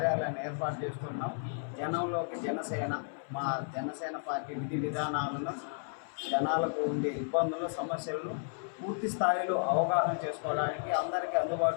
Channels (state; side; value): silent; right; 56 dB below the other